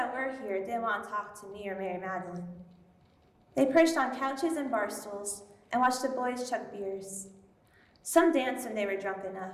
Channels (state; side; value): identical; both; correlation 1.00